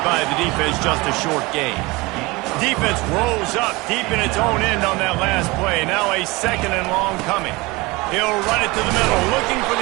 by the defense, just a short gain. Defense rolls up deep in its own end on that last play. Now a 2nd and long coming. He'll run it to the middle, looking for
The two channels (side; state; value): left; quieter; 23.4 dB